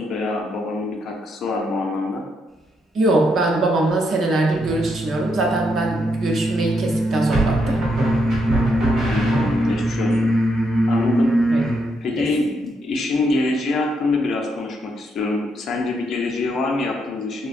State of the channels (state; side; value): normal; both; correlation 0.78